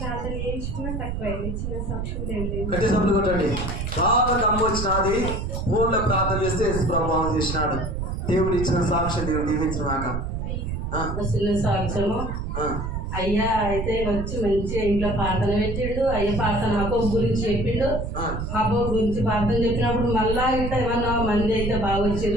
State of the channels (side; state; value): right; noise; rumble, 4 dB below the sound